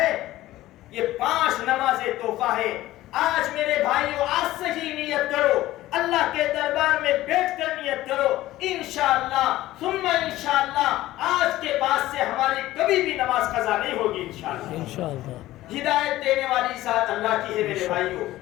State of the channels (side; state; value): right; quieter; 15.9 dB